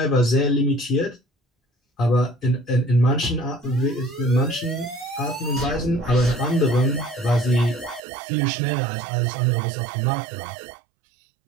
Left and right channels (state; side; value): drops out; left; at 8.0 s